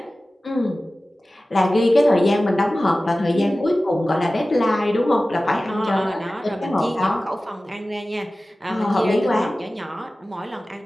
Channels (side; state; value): both; normal; correlation 0.96